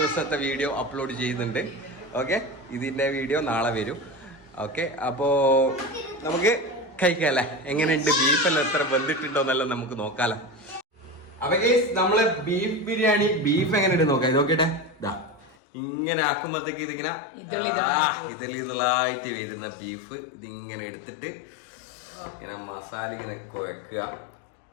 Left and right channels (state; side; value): drops out; right; at 15.6 s